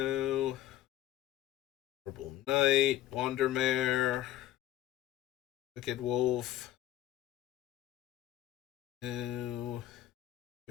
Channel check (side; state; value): right; quieter; 13.7 dB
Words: Purple Knight, Wandermare, Wicked Wolf, no.